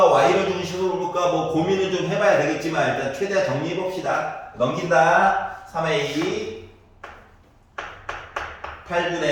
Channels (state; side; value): identical; both; correlation 1.00